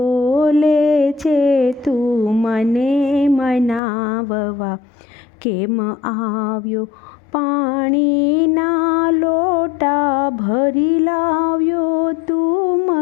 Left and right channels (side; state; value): right; drops out; at 3.8 s